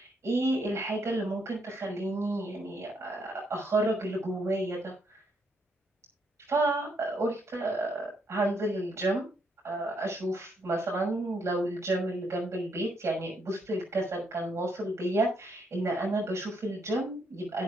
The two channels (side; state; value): both; normal; correlation 0.75